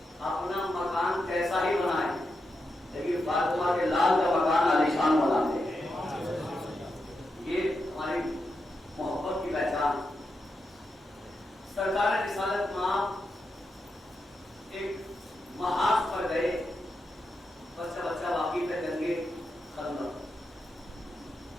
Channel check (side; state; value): both; normal; correlation 0.86